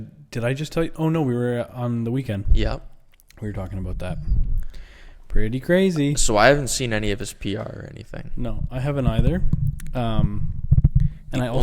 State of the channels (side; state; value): both; identical; correlation 1.00